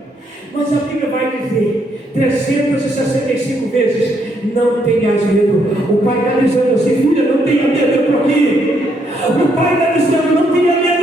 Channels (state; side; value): normal; both; correlation 0.74